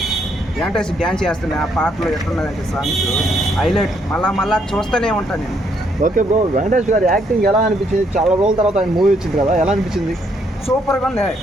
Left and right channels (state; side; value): normal; both; correlation 0.72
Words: డ్యాన్స్ చేస్తుంది. ఆ పాటలో ఎట్లున్నదంటే సాంగ్స్ హైలైట్. మళ్ళా చూస్తూనే ఉంటాను నేను. ఓకే బ్రో, వెంకటేష్ గారి యాక్టింగ్ ఎలా అనిపించింది? చాలా రోజుల తర్వాత ఆయన మూవీ వచ్చింది కదా, ఎలా అనిపించింది? సూపర్గా ఉంది